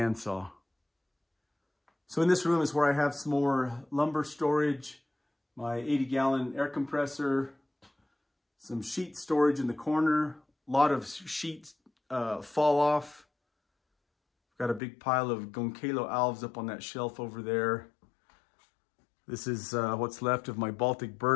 So in this room is where I have some more lumber storage, my 80-gallon air compressor, some sheet storage in the corner. A lot of sheets fall off. Got a big pile of Gonkalo alves up on that shelf over there. This is what's left of my Baltic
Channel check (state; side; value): drops out; right; at 14.8 s